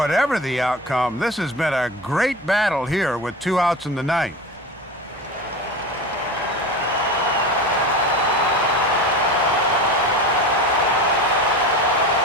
the outcome, this has been a great battle here with 2 outs in the ninth.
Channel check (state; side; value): noise; right; hum, 30 dB below the sound